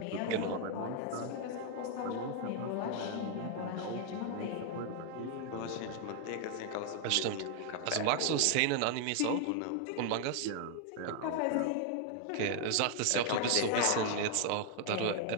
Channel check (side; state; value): both; different; correlation 0.00